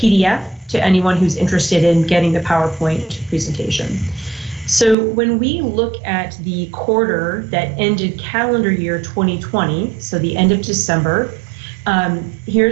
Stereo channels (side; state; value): left; drops out; at 5.0 s